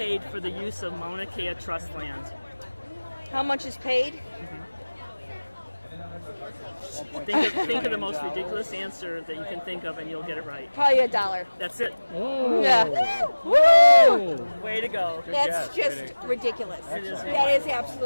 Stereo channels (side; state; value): both; inverted; correlation -1.00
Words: for the use of Mauna Kea Trust land? How much is paid? Think of the most ridiculous answer that you can think of, and you'll get it right. Probably $1. That's it. Oh. Yeah. Woo! Way to go. That's just ridiculous. It is That is